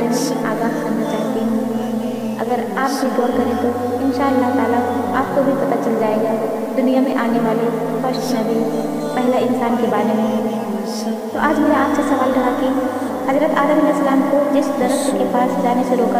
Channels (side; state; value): both; identical; correlation 1.00